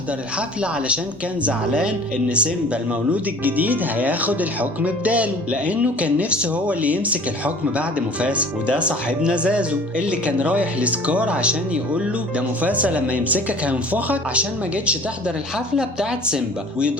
الحفلة علشان كان زعلان ان سيمبا المولود الجديد هياخد الحكم بداله، لانه كان نفسه هو اللي يمسك الحكم بعد مفاسة. وده صاحبنا زازو اللي كان رايح لسكار عشان يقول له ده مفاسة لما يمسكك هينفخك عشان ما جيتش تحضر الحفلة بتاعت سيمبا،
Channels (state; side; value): normal; both; correlation 0.46